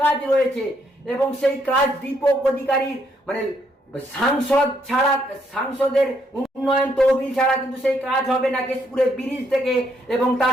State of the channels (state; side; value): normal; both; correlation 0.73